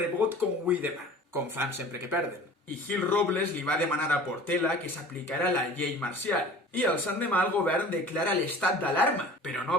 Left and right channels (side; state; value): both; normal; correlation 0.43